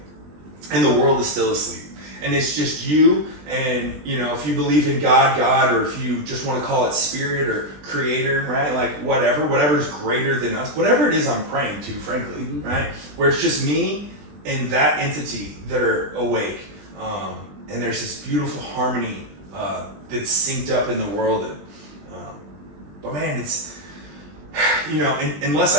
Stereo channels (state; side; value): late; left; 20 ms